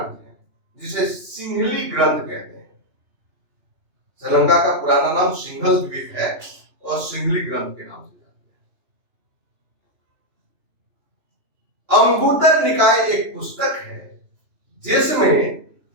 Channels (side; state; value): left; late; 3.0 ms